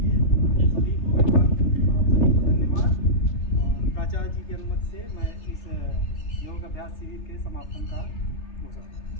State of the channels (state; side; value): late; right; 3.3 ms